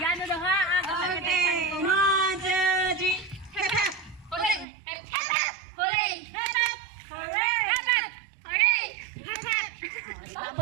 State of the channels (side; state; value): left; drops out; at 4.7 s